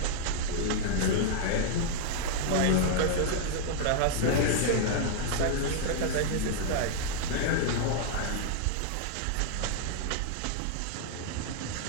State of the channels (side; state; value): both; different; correlation -0.01